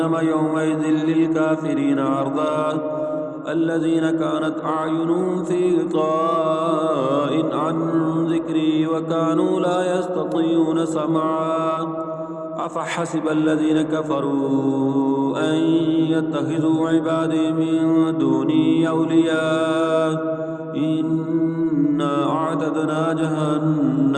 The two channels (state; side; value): identical; both; correlation 1.00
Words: يومئذ للكافرين عرضا الذين كانت أعينهم في غطاء عن ذكري وكانوا لا يستطيعون سمعا أفحسب الذين كفروا أن يتخذوا عبادي من دوني أولياء إنا أعتدنا